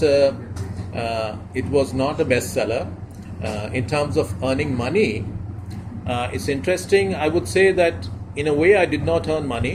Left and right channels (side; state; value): both; identical; correlation 1.00